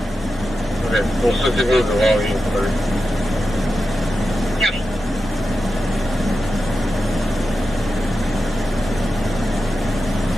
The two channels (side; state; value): both; normal; correlation 0.91